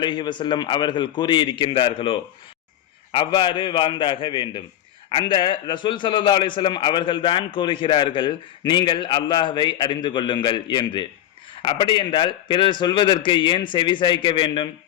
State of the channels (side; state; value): right; quieter; 11.9 dB